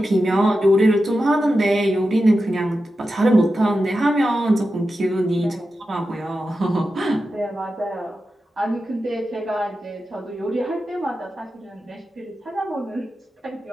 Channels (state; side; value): normal; both; correlation 0.91